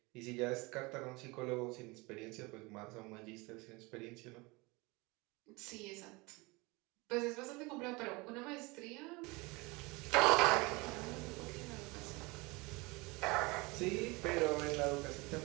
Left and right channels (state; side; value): quieter; left; 25.1 dB